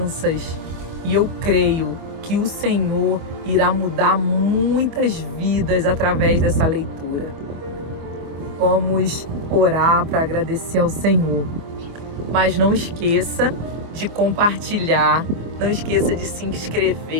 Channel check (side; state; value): left; late; 24 ms